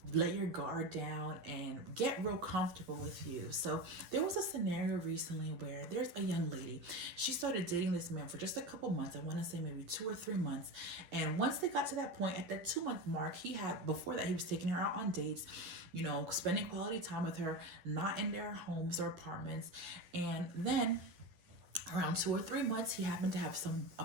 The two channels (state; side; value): late; left; 11 ms